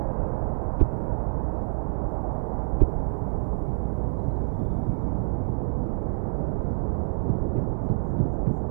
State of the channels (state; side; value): silent; left; digital silence